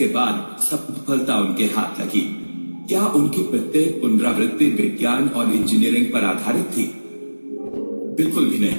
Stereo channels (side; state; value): both; inverted; correlation -1.00